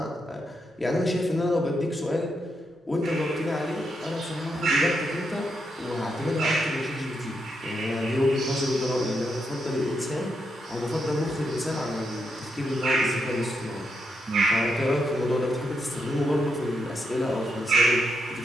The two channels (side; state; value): both; normal; correlation 0.82